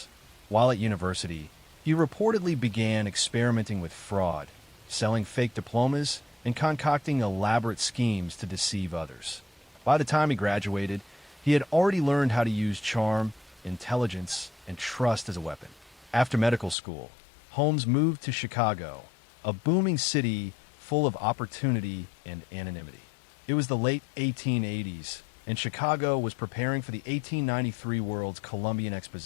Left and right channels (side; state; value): right; drops out; at 16.8 s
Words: While at university, he reportedly began experimenting with fraud, selling fake diplomas, and concocting elaborate schemes to deceive others. By the time he graduated, he had already learned how to use charm, intelligence, and trust as a weapon. After medical school, Holmes moved to Chicago, a booming city full of opportunity and anonymity. It was the late 1880s, and Chicago was preparing for the 1893 World's Columbian